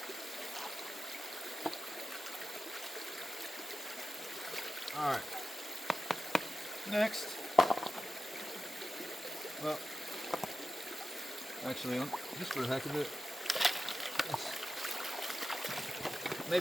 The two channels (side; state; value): both; normal; correlation 0.93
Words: All right. Next. Well, actually, just for the heck of it,